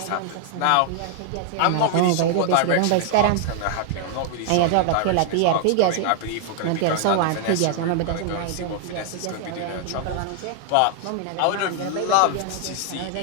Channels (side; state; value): both; different; correlation 0.00